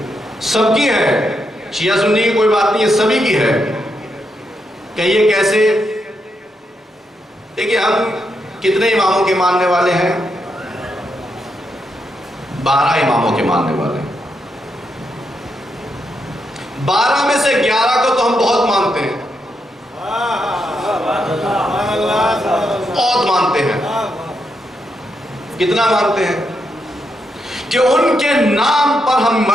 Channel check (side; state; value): both; normal; correlation 0.82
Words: سب کی ہے، شیعہ سنی کی کوئی بات نہیں، یہ سبھی کی ہے۔ کہیے کیسے؟ دیکھیے ہم کتنے اماموں کے ماننے والے ہیں؟ 12 اماموں کے ماننے والے ہیں۔ 12 میں سے 11 کو تو ہم بہت مانتے ہیں، بہت مانتے ہیں۔ کتنا مانتے ہیں؟ کہ ان کے نام پر ہم